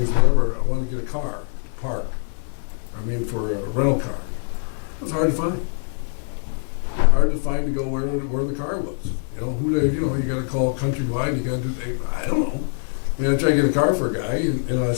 whatever, I want to get a car, to park. I mean, for a rental car. It was hard to find. Hard to find to go where the car was. You got to call Countrywide, you got to do, I don't know. I mean, I tried to get a car for a guy, and I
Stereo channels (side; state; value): right; silent; digital silence